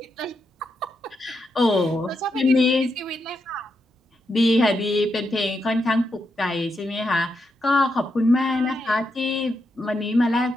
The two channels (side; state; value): both; normal; correlation 0.83